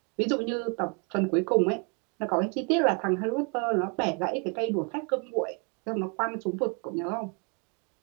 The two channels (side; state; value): left; quieter; 34.9 dB